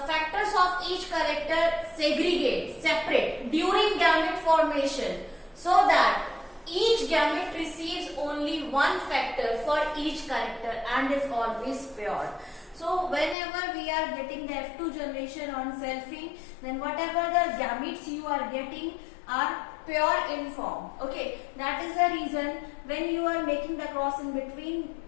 of each character segregate, separate during gamete formation, so that each gamete receives only one factor for each character and is always pure. So whenever we are getting the F2 generation on selfing, then whatever the gametes you are getting are pure in form. Okay, that is the reason when you are making the cross in between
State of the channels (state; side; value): drops out; right; at 13.4 s